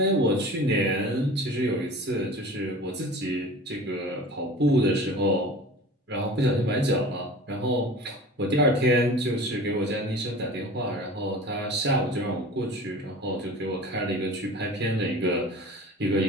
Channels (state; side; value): normal; both; correlation 0.39